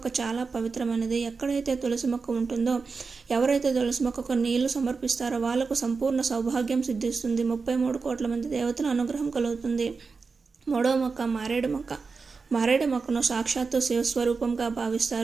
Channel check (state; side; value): quieter; left; 4.7 dB